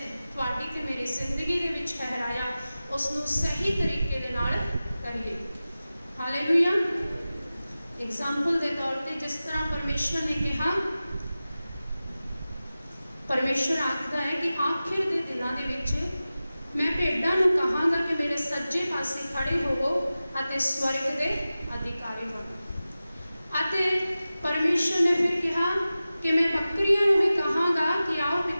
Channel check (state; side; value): inverted; both; correlation -0.95